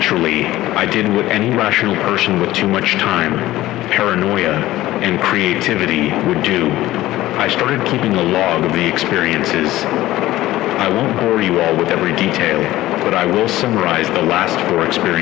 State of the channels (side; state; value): right; quieter; 16.0 dB